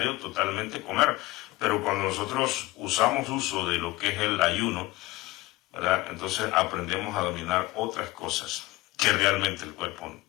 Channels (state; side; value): quieter; right; 19.1 dB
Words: totalmente comer. Pero cuando nosotros usamos uso de lo que es el ayuno, ¿verdad? Entonces aprendemos a dominar otras cosas que realmente el cuerpo